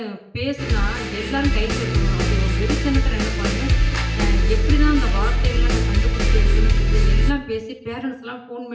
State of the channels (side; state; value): both; identical; correlation 1.00